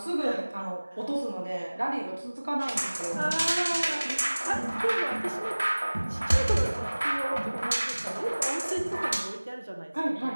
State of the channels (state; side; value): inverted; both; correlation -1.00